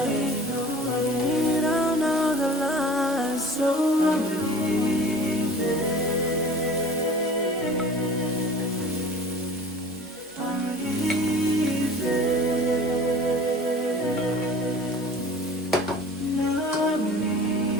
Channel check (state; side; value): normal; both; correlation 0.43